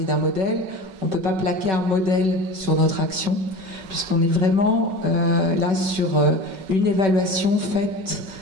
d'un modèle. On ne peut pas plaquer un modèle sur notre action, puisqu'on est vraiment là sur une évaluation faite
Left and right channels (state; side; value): late; left; 5.3 ms